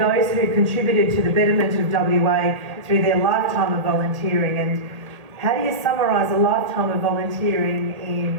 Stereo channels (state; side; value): late; left; 1.8 ms